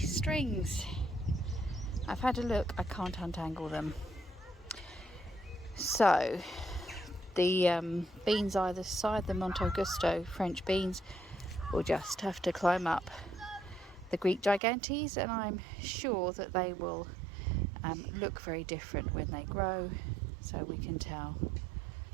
I've had a look, I can't untangle them. So the beans either side, the Monte Augusto French beans, will just have to climb up the Greek gigantes, and I'm sure that they will look very different when they grow, so we can tell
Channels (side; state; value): left; drops out; at 14.6 s